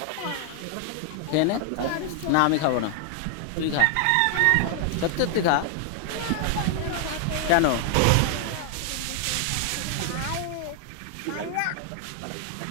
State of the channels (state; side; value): different; both; correlation 0.00